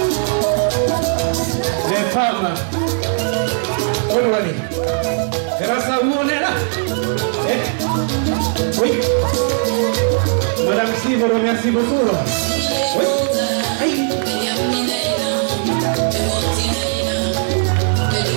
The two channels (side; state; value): left; silent; 67 dB below the other